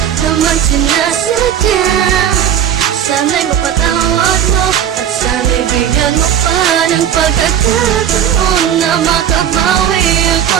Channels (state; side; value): quieter; left; 9.5 dB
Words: naman sinasadya. Sana'y mapatawad mo at sana'y bigyan mo pa ng pagkakataon na makabawi